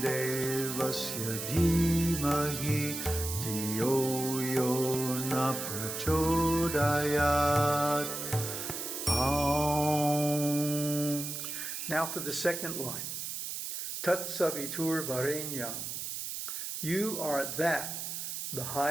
devasya dhimahi dhiyo yo na prachodayat. Now for the second line. Tat-savitṛ-varenyam. You are that, the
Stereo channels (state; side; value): noise; right; hiss, 5 dB below the sound